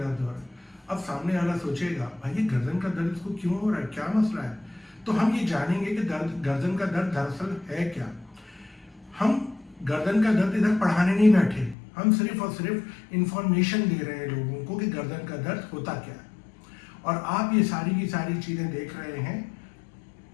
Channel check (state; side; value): drops out; right; at 11.8 s